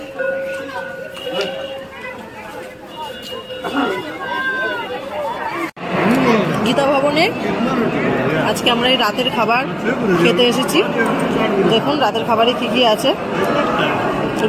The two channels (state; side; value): identical; both; correlation 1.00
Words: গীতা ভবনে আজকে আমরা এই রাতের খাবার খেতে এসেছি। দেখুন রাতের খাবারে কি কি আছে।